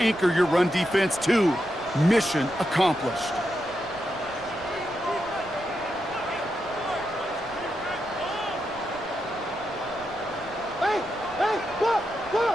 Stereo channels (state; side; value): noise; right; rumble, 23 dB below the sound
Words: your run defense too. Mission accomplished.